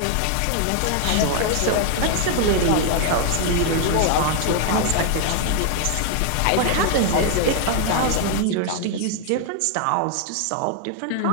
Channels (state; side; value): different; both; correlation 0.00